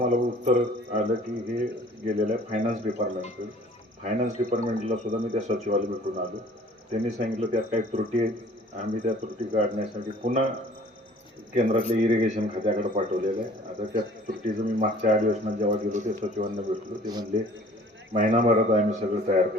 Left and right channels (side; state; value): both; normal; correlation 0.51